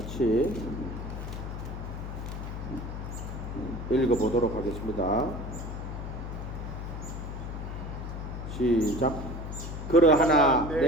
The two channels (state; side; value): noise; left; hum, 7 dB below the sound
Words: 읽어보도록 하겠습니다. 시작. 그러하나